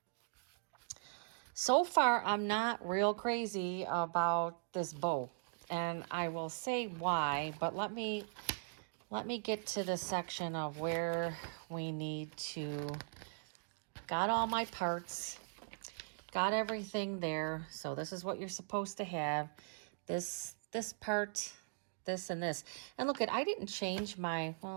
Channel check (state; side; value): silent; left; digital silence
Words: So far, I'm not real crazy about this bow, and I will say why, but let me get to the section of where we need to, got all my parts, got everything there. So this is what you're supposed to have. This part, this and this. And look, I didn't change my, well,